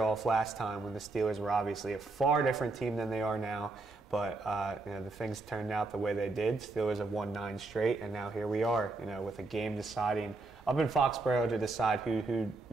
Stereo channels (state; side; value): quieter; left; 3.3 dB